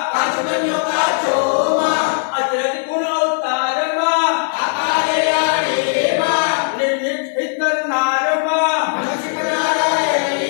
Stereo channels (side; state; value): right; silent; digital silence